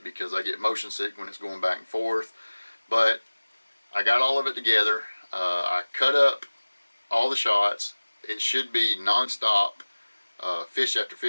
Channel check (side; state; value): both; inverted; correlation -1.00